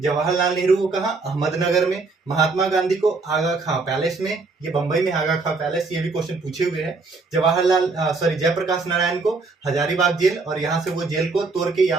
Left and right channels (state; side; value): quieter; left; 4.0 dB